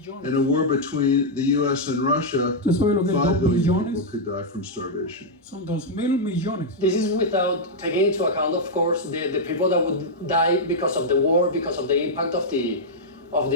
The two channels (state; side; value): normal; both; correlation -0.05